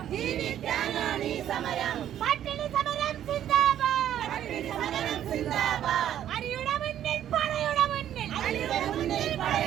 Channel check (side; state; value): left; quieter; 10.9 dB